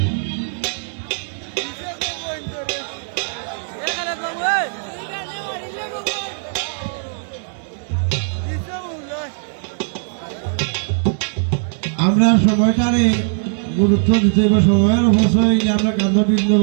আমরা সময়টারে গুরুত্ব দিতে হবে, সময়ের অবশ্যই আমরা কান্দ বৃন্দ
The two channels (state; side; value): silent; left; 66 dB below the other